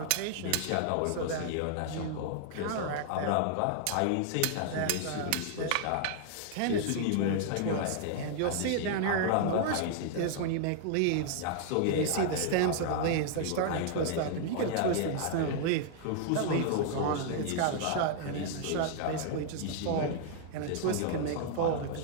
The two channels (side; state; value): both; different; correlation -0.01